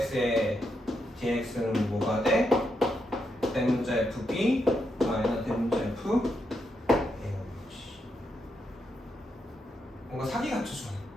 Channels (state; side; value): normal; both; correlation 0.82